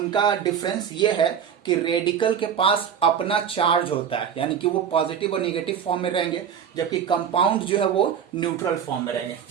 डिफरेंस ये है कि रेडिकल के पास अपना चार्ज होता है, यानी कि वो पॉजिटिव और निगेटिव फॉर्म में रहेंगे, जबकि कंपाउंड जो है वो न्यूट्रल फॉर्म में रहेंगे।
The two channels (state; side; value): quieter; left; 8.1 dB